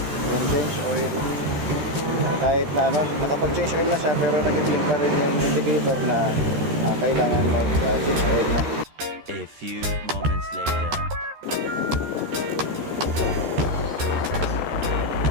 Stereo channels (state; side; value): late; left; 13 ms